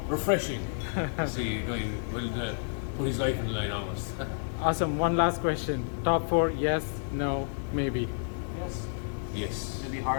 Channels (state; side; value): silent; right; digital silence